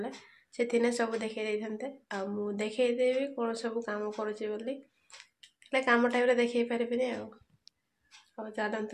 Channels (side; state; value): both; identical; correlation 1.00